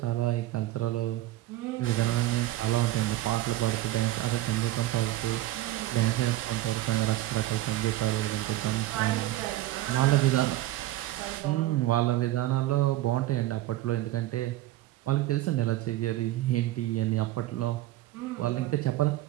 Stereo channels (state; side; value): quieter; left; 15.4 dB